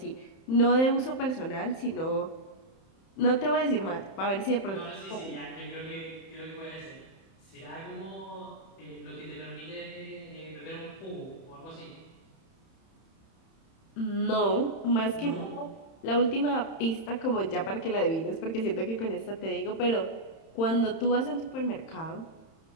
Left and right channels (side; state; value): right; late; 31 ms